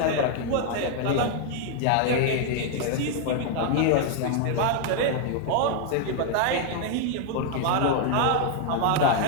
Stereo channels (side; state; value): both; different; correlation 0.00